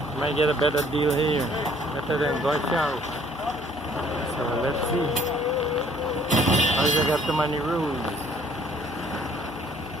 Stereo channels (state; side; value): noise; left; hum, 24 dB below the sound